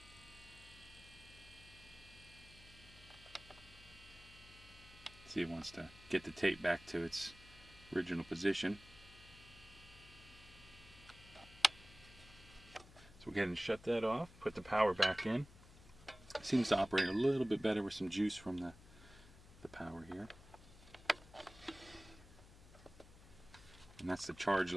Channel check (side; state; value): left; noise; hum, 20 dB below the sound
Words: See, it wants to get the tape back to its original position. So we'll go ahead and shut that off, put the power back in. It seems to operate a little bit better with some juice from the power here. And that's the charge